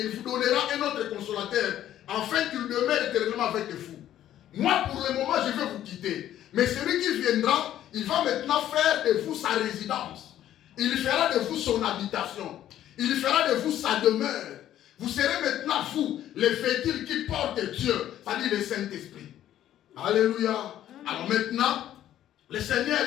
il vous donnera un autre consolateur afin qu'il demeure éternellement avec vous. Moi, pour le moment, je vais vous quitter. Mais celui qui viendra, il va maintenant faire de vous sa résidence. Il fera de vous son habitation. Il fera de vous sa demeure. Vous serez maintenant, vous, les véhicules qui portent Dieu, c'est-à-dire le Saint-Esprit. Alléluia. Alors maintenant, le Seigneur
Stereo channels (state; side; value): quieter; right; 12.0 dB